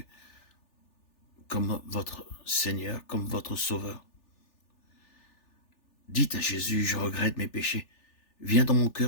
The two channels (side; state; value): right; late; 3.4 ms